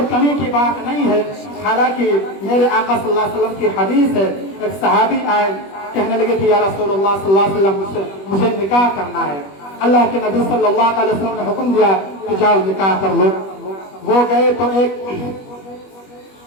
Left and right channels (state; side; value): late; right; 21 ms